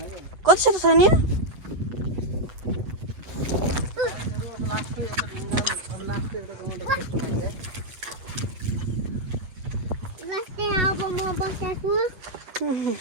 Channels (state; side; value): late; left; 8.0 ms